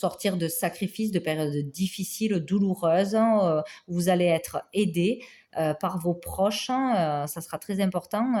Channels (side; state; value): both; identical; correlation 1.00